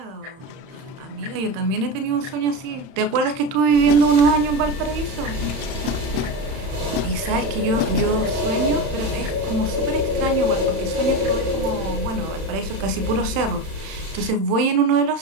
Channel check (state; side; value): late; left; 31 ms